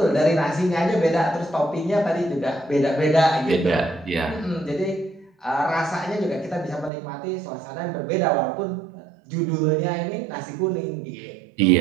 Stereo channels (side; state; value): left; drops out; at 6.9 s